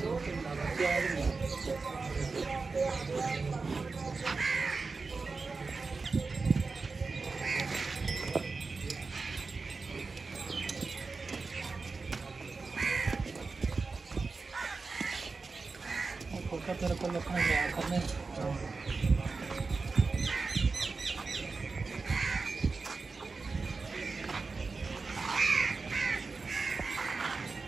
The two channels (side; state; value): left; quieter; 4.2 dB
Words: तेरे को लिखना है करने